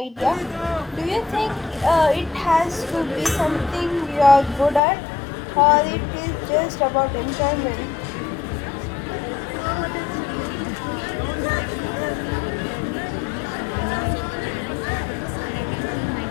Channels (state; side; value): drops out; right; at 4.8 s